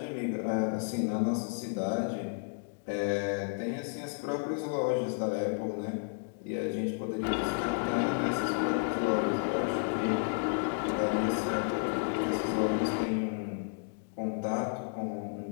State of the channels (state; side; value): silent; right; digital silence